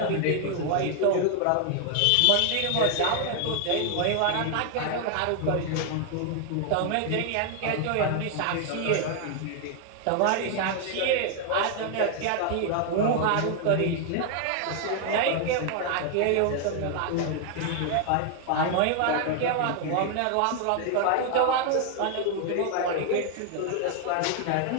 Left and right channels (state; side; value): different; both; correlation 0.00